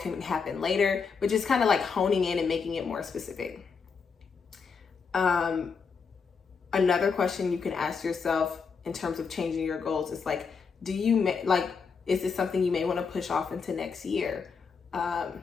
happen later, but just kind of honing in and making it more specific. Another question you can ask yourself in terms of changing your goals is do you is this something you may want to push off into next year?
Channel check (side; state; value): right; quieter; 5.6 dB